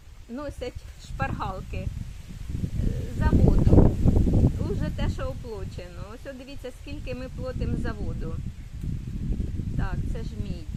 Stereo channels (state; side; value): identical; both; correlation 1.00